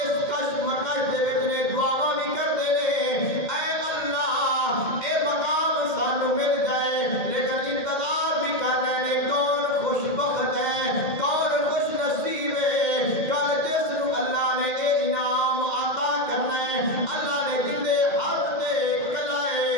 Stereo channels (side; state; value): right; late; 2.1 ms